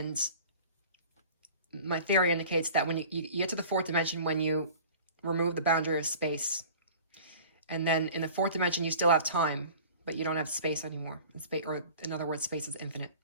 my theory indicates that when you get to the 4th dimension, when you remove the boundary of space, and then in the 4th dimension, you still have time, but you don't have space anymore. Or in other words, space is infinite.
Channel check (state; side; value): inverted; both; correlation -0.43